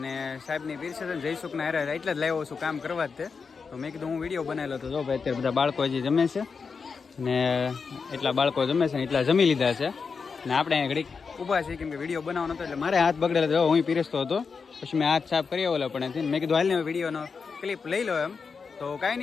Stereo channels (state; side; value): quieter; right; 5.3 dB